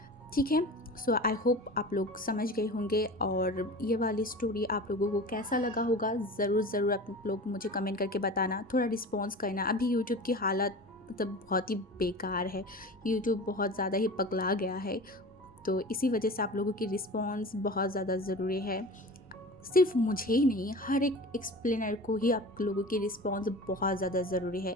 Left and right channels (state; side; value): normal; both; correlation 0.35